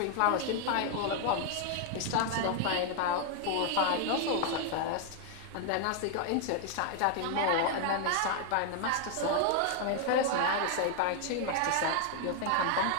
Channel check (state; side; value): different; both; correlation 0.00